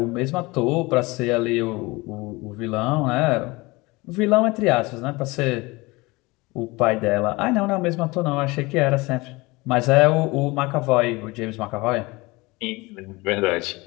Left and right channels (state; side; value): quieter; right; 23.4 dB